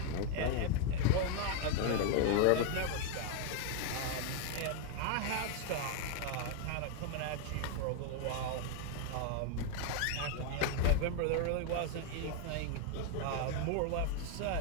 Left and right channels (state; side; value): different; both; correlation 0.00